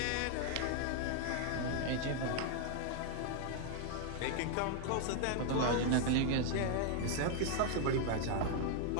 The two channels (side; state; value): both; different; correlation 0.00